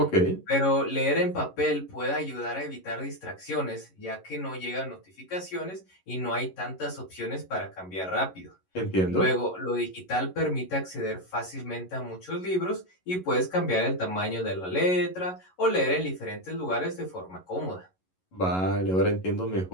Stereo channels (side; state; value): right; late; 11 ms